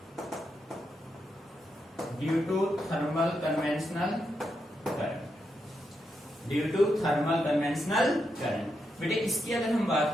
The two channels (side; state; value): both; normal; correlation 0.83